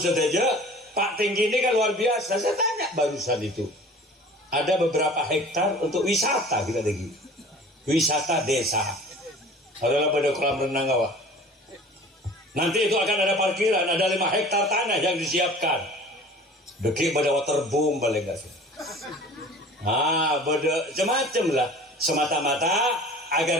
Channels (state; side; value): normal; both; correlation 0.44